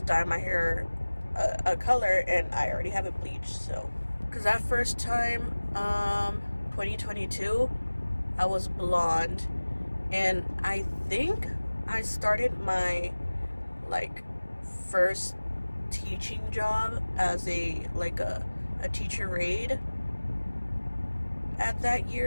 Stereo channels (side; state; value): both; inverted; correlation -1.00